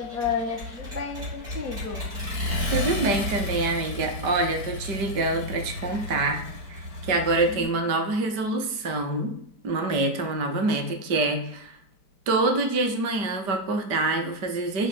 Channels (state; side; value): late; left; 5.1 ms